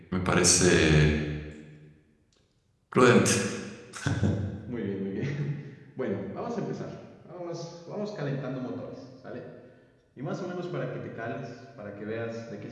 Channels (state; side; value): identical; both; correlation 1.00